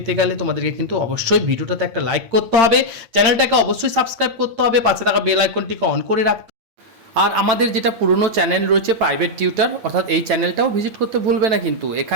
গেলে তোমাদেরকে কিন্তু অবশ্যই ভিডিওটাতে একটা লাইক করতে হবে, চ্যানেলটাকে অবশ্যই সাবস্ক্রাইব করতে হবে, পাশে থাকা বেল আইকনটিকে অন করে রাখতে। আর আমাদের যেটা পুরনো চ্যানেল রয়েছে প্রাইভেট টিউটর, অর্থাৎ এই চ্যানেলটাও ভিজিট করতে ভুলবে না কিন্তু।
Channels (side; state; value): left; late; 8.8 ms